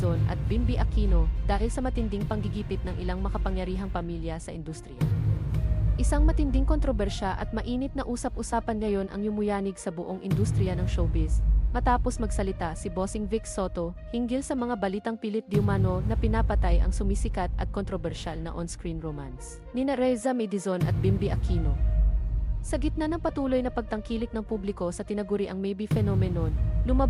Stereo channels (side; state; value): both; identical; correlation 1.00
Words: at Bimby Aquino dahil sa matinding panggigipit ng ilang makapangyarihang pamilya sa industriya. Isang matinding kontrobersya at mainit na usap-usapan ngayon ang yumuyanig sa buong industriya ng showbiz, matapos magsalita si Bossing Vic Soto hinggil sa mga balitang pilit diumano na pinapatay ang sumisikat at kontrobersyal na on-screen romance nina Raisa Medizon at Bimby Aquino. Sa gitna ng patuloy na pagtangkilik ng publiko sa tinaguriang maybe phenomenon,